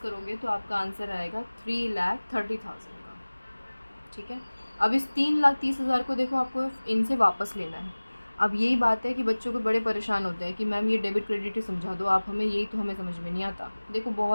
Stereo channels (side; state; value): both; inverted; correlation -1.00